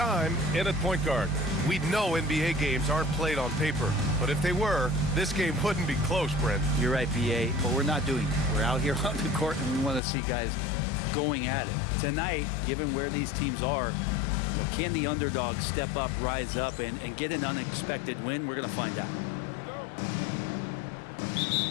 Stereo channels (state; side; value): drops out; right; at 10.0 s